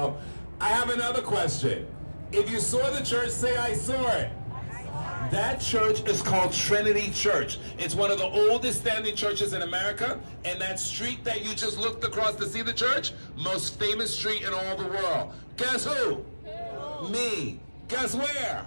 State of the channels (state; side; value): inverted; both; correlation -1.00